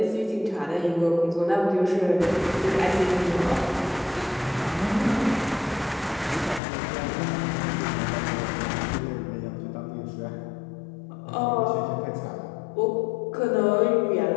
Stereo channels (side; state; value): right; drops out; at 6.6 s